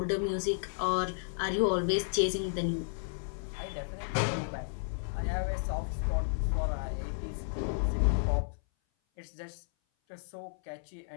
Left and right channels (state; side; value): silent; right; 56 dB below the other